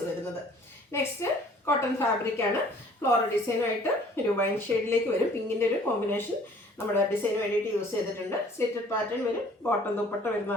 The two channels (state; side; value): normal; both; correlation 0.54